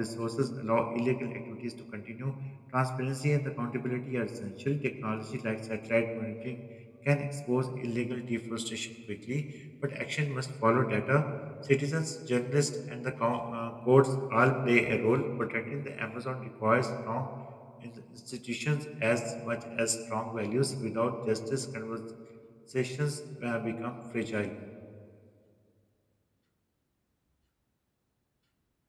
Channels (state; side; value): identical; both; correlation 1.00